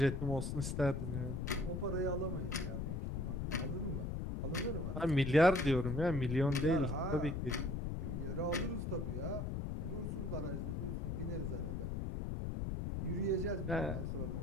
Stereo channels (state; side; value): noise; left; rumble, 2 dB below the sound